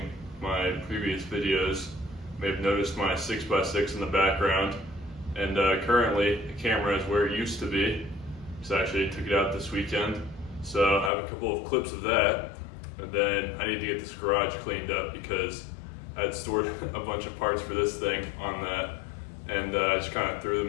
my previous videos may have noticed my 6x6 in the background, and currently the camera is where it used to be. So I actually took it out this weekend, so I have a couple of clips of that, and then I need to get this garage cleaned up because I had stored a bunch of parts for this thing on that, and I just kind of threw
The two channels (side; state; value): right; drops out; at 11.1 s